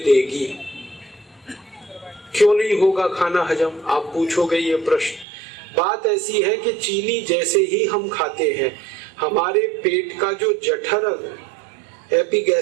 क्यों नहीं होगा खाना हजम, आप पूछोगे ये प्रश्न। बात ऐसी है कि चीनी जैसे ही हम खाते हैं, हमारे पेट का जो जठर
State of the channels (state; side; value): drops out; left; at 5.2 s